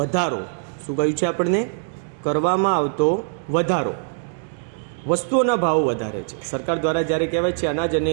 શું કહ્યું છે આપણને? કરવામાં આવતો વધારો. વસ્તુઓના ભાવ વધારે છે. સરકાર દ્વારા જ્યારે કહેવાય છે અનાજ અને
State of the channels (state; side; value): silent; left; digital silence